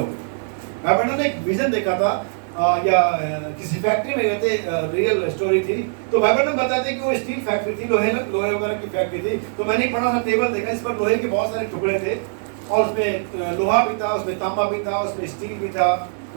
मैंने ने एक विजन देखा था या किसी फैक्ट्री में गए थे, रियल स्टोरी थी। तो बाइबल में बताते कि वो स्टील फैक्ट्री थी, लोहे वगैरह की फैक्ट्री थी। तो मैंने एक बड़ा सा टेबल देखा, इस पर लोहे के बहुत सारे टुकड़े थे और उसमें लोहा भी था, उसमें तांबा भी था, उसमें स्टील भी था,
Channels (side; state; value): left; silent; digital silence